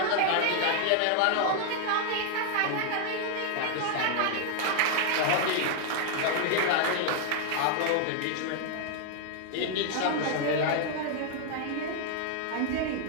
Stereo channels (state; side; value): different; both; correlation 0.00